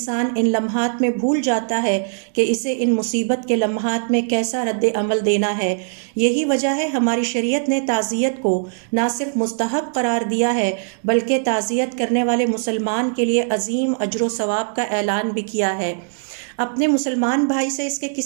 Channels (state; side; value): silent; left; digital silence